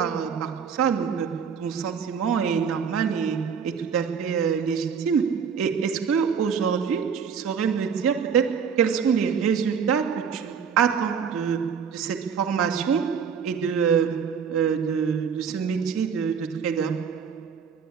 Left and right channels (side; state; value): left; quieter; 6.8 dB